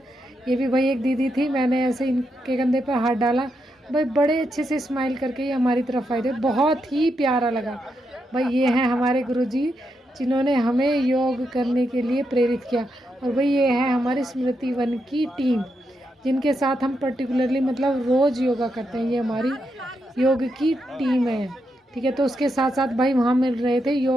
ये भी भाई एक दीदी थी, मैंने ऐसे इनके कंधे पर हाथ डाला, भाई बड़े अच्छे से स्माइल करके ये हमारी तरफ आए थे, बहुत ही प्यारा लगा। भाई ये हैं हमारे गुरुजी जिन्होंने हमें योग करने के लिए प्रेरित किया। और भाई ये है हमारी स्मृति वन की टीम, जिनके साथ हम पर्टिकुलरली मतलब रोज़ योगा करते हैं। ये हमारी योग की टीम है, ठीक है। तो उसके साथ साथ भाई वहाँ मिल रहे थे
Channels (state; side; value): normal; both; correlation 0.83